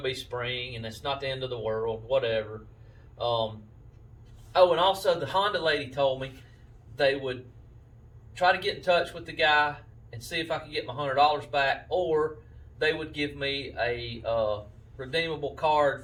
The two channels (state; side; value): identical; both; correlation 1.00